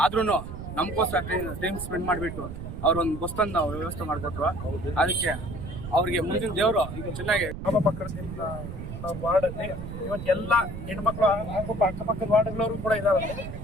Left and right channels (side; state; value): right; noise; rumble, 9 dB below the sound